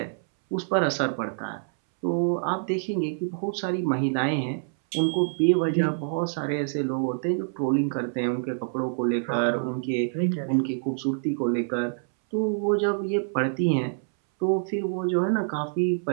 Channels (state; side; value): silent; left; 61 dB below the other